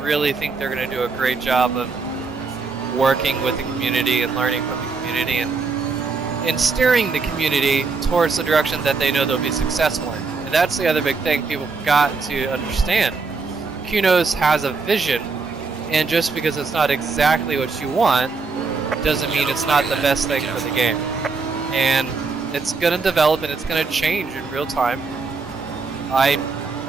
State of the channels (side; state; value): left; quieter; 4.4 dB